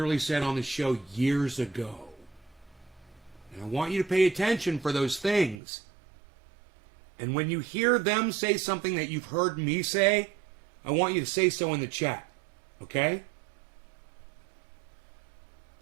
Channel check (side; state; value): left; drops out; at 5.6 s